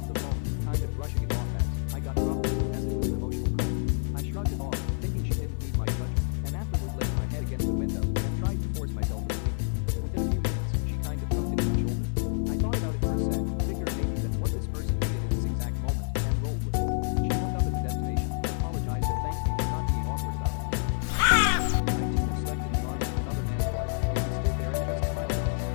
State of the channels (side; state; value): right; silent; digital silence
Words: the phone, kind of brushing it off as, I got problems, as it was an emotional call. I shrugged it off, thinking she didn't need my judgment, and afterward laid my head against a window and tried to force myself asleep. Within a few minutes, she kind of thunked into my shoulder. I thought about it for a sec, figured maybe that's what this person needed in this exact moment, and rolled with it. She woke up at the destination, apologized and thanked me for not being awkward about it. I too have slept in the arms of another man's wife, and he stood there and just smiled at us.